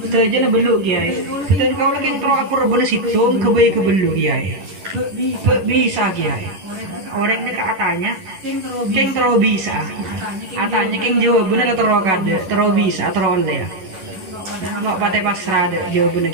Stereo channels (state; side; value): late; left; 11 ms